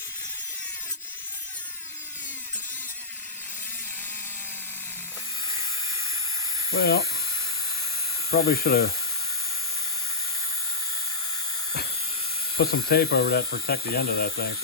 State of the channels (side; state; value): right; quieter; 3.7 dB